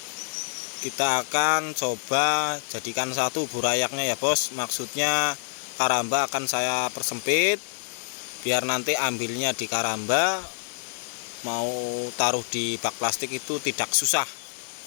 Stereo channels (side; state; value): right; silent; digital silence